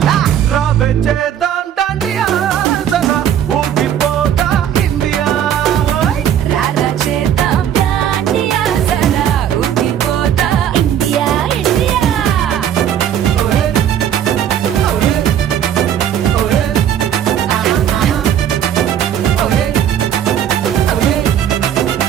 రావే చేద్దాం డాండియా సలా ఊగిపోతా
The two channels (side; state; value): left; quieter; 9.7 dB